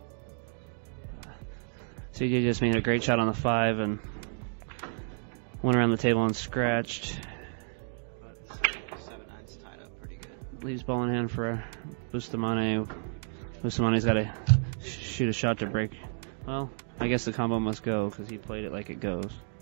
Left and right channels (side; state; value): left; silent; 57 dB below the other